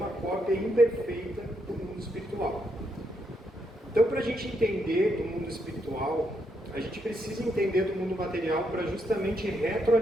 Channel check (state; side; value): normal; both; correlation 0.78